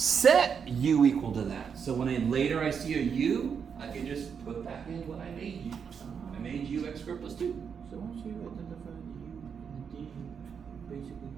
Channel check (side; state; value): left; quieter; 6.8 dB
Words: u equal to that. So when later I see a u, I can just put back in what I made u. I made u x squared plus 2. So once you identify the u and the d, basically